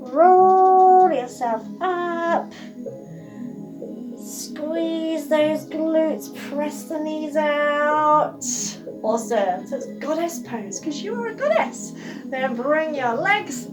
Roll yourself up. Squeeze those glutes, press the knees out. Awesome. So it's goddess pose because you are a goddess. Then bring your legs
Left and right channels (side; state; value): both; identical; correlation 1.00